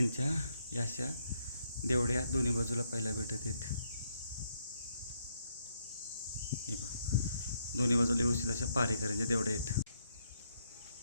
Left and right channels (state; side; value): inverted; both; correlation -0.75